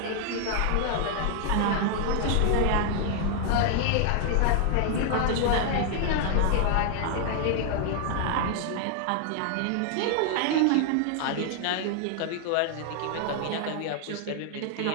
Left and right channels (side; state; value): both; different; correlation 0.00